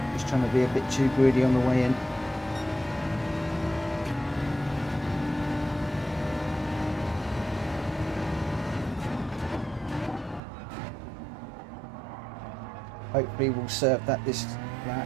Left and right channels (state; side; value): drops out; left; at 10.4 s